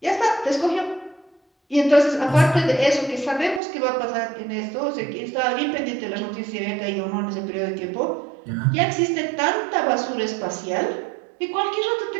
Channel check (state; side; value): drops out; left; at 3.6 s